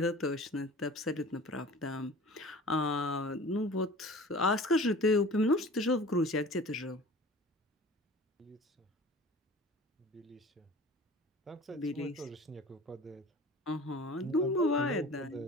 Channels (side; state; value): both; normal; correlation 0.42